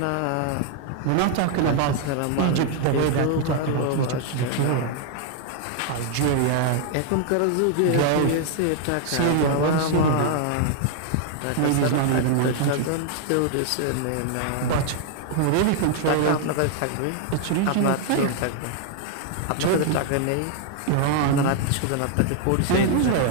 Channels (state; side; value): different; both; correlation 0.00